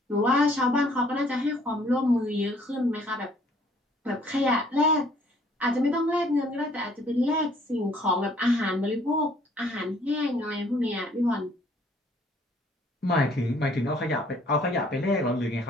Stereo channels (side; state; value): both; normal; correlation 0.61